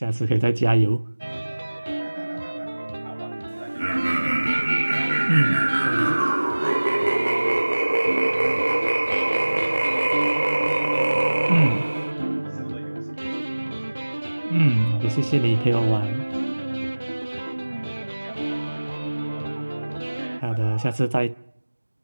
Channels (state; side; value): inverted; both; correlation -1.00